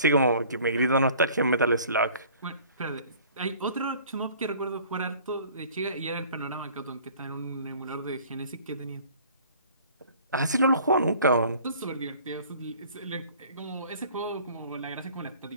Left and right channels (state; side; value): inverted; both; correlation -0.51